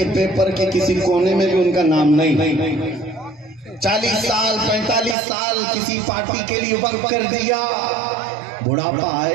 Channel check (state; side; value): drops out; left; at 5.2 s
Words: پیپر کے کسی کونے میں بھی ان کا نام نہیں۔ 40 سال 45 سال کسی پارٹی کے لیے وقف کر دیا، بڑھاپا